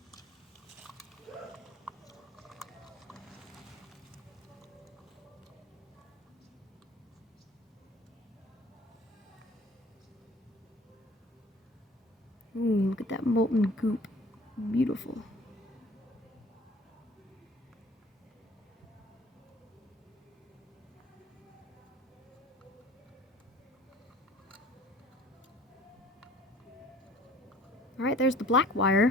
Ooh, look at that molten goop. Beautiful. Alright, there's the black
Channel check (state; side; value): normal; both; correlation 0.51